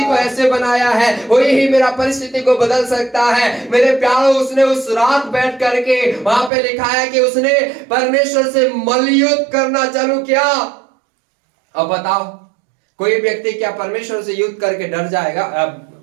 को ऐसे बनाया है वही ही मेरा परिस्थिति को बदल सकता है। मेरे प्यारों, उसने उस रात बैठ करके, वहां पे लिखा है कि उसने परमेश्वर से मल्लयुद्ध करना चालू किया। अब बताओ, कोई व्यक्ति क्या परमेश्वर से युद्ध करके डर जाएगा,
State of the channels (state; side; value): drops out; left; at 6.5 s